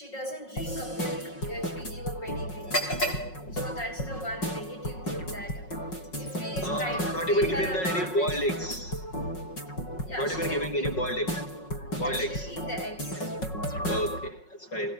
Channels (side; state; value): right; late; 5.4 ms